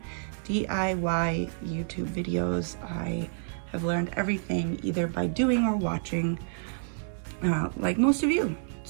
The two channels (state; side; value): silent; left; digital silence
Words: DIY YouTube videos. I have learned everything either by doing or watching, like most of you.